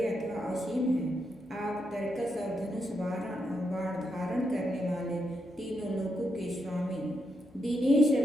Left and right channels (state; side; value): normal; both; correlation 0.82